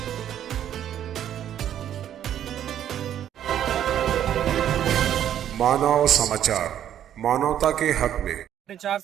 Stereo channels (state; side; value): quieter; left; 10.5 dB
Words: मानव समाचार, मानवता के हक में। 4